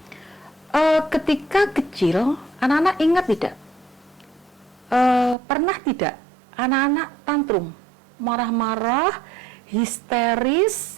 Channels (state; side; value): drops out; left; at 5.4 s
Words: ketika kecil, anak-anak ingat tidak? Pernah tidak anak-anak tantrum, marah-marah, histeris